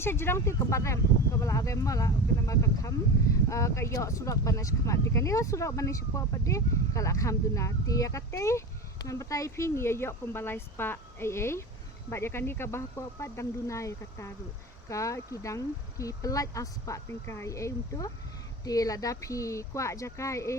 jirang ti kabarem kabala agem mala kana makakham kayo surak banas khamat ti kanila surak banas po pade kala kham duna ti katay nan batay ping yo kumbalay spa ai ba ya kani ka bah po pa dang dunay kataru ka kidang ki pelat aspa tingkai untuk ti lada pi kwa jaka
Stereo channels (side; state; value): both; normal; correlation 0.29